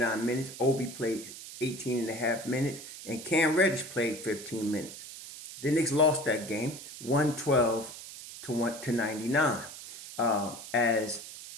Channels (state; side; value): noise; right; hiss, 13 dB below the sound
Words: minutes. Obi played 18 and a half minutes. And Cam Reddish played 15 minutes. The Knicks lost that game 112 to 99 as